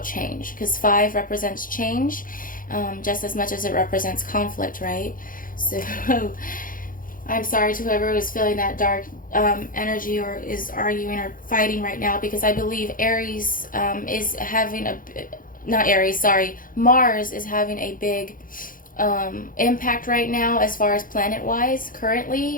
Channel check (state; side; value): late; right; 0.40 ms